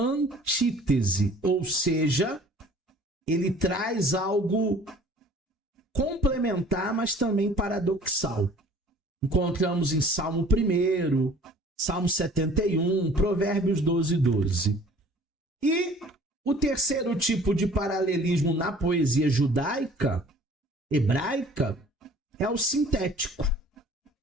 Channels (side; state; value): both; normal; correlation 0.50